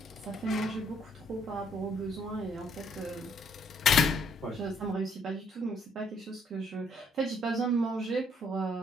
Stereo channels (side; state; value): both; normal; correlation 0.67